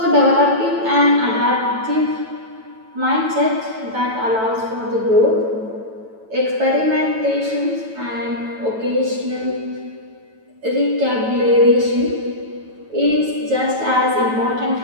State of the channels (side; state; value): left; late; 9.1 ms